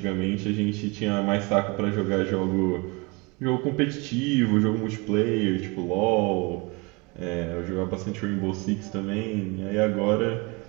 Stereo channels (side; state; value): left; quieter; 27.9 dB